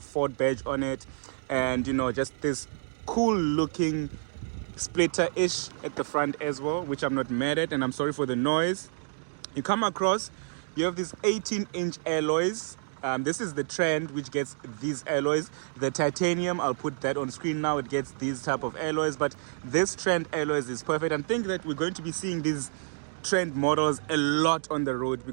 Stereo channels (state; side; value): silent; left; digital silence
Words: badge on it, and just this cool looking splitter-ish at the front as well, which I'm not mad at, and I'm sorry for the noise. You come across, you have these 18-inch alloys. This is the trend which gets these alloys. The titanium, I'll put that on screen now, it gets these type of alloys, but this trend alloys is perfect. And I think that we're going to be seeing these trend models a lot on the road,